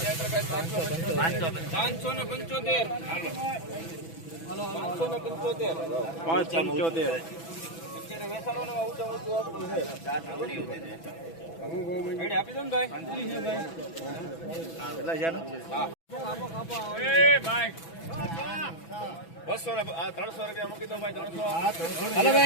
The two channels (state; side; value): late; right; 6.1 ms